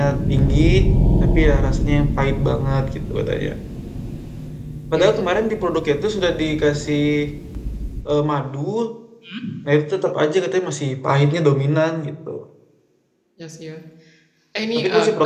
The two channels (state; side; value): identical; both; correlation 1.00